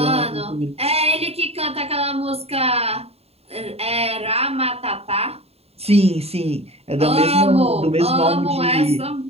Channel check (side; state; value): left; late; 0.29 ms